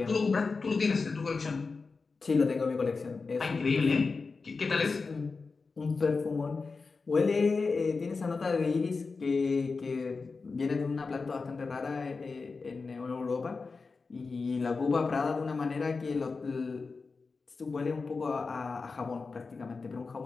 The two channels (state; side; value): quieter; right; 4.4 dB